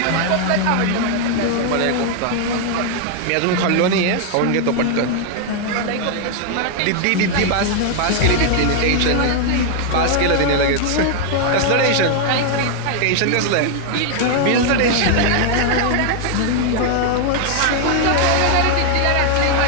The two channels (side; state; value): both; different; correlation 0.00